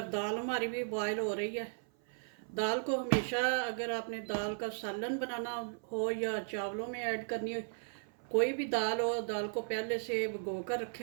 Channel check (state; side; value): silent; left; 54 dB below the other